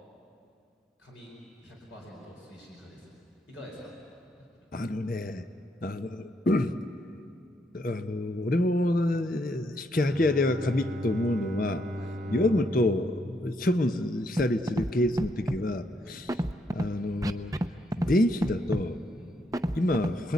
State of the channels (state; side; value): normal; both; correlation 0.75